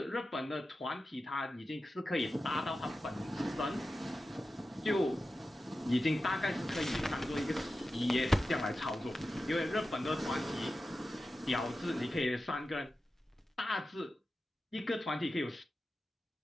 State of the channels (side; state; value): both; normal; correlation 0.93